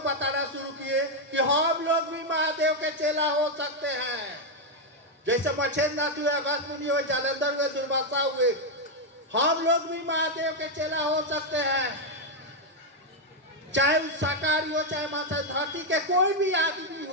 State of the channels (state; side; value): normal; both; correlation 0.01